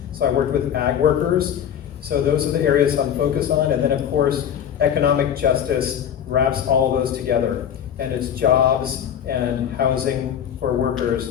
So I worked with ag workers. So those are the areas I'm focused on. And then of course, economic justice wraps all those together. And it's jobs and housing for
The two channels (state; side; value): quieter; right; 9.2 dB